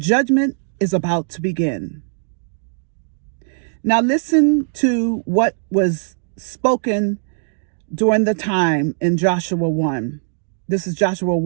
is about to begin. Now listen to what was spoken during the time in Joshua 1. This is Joshua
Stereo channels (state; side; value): silent; left; digital silence